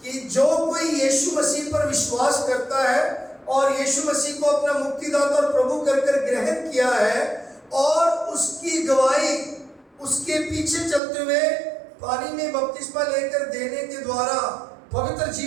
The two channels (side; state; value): left; drops out; at 11.0 s